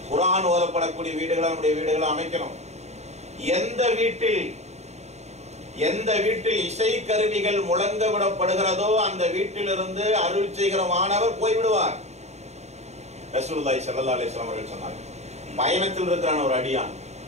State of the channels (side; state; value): left; late; 0.32 ms